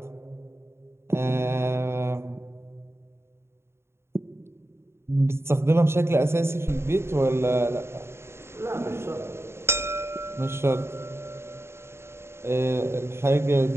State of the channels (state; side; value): late; left; 0.12 ms